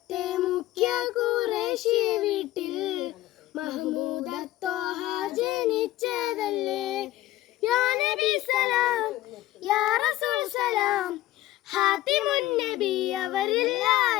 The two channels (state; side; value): quieter; right; 15.5 dB